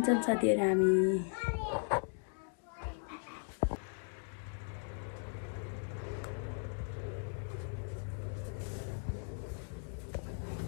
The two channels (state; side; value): silent; right; 53 dB below the other